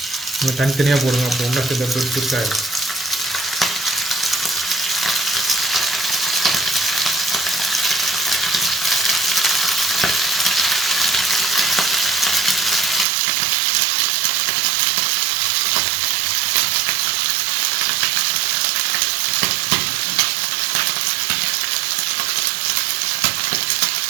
நம்ம தனித்தனியாக போடுங்க, அப்போ ஒன்றா சேர்ந்து பொரிச்சாயிடும்.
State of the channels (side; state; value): left; drops out; at 13.1 s